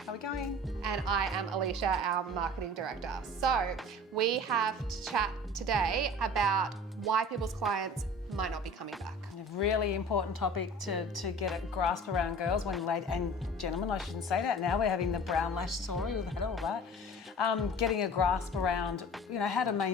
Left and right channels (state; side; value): normal; both; correlation 0.42